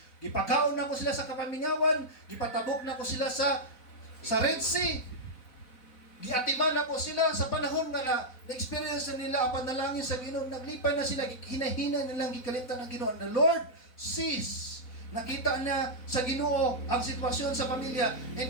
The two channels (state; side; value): late; right; 4.0 ms